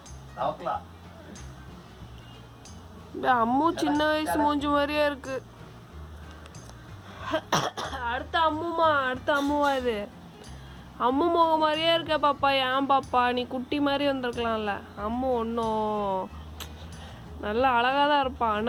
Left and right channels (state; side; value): identical; both; correlation 1.00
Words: அம்மு சின்ன வயசு மூஞ்சி மாதிரியே இருக்கு. அடுத்த அம்முவா இது? அம்மு முகம் மாதிரியே இருக்க பாப்பா. ஏன் பாப்பா நீ குட்டி மாதிரி வந்திருக்கலாம்ல? அம்மு ஒன்றும் நல்லா அழகாக தான் இருப்பாள்.